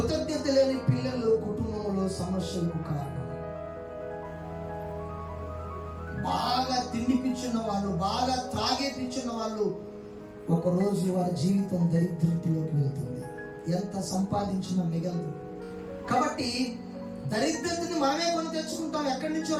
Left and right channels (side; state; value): both; identical; correlation 1.00